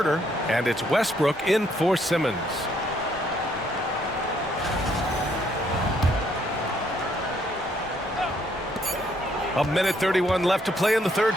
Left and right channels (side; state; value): both; normal; correlation 0.69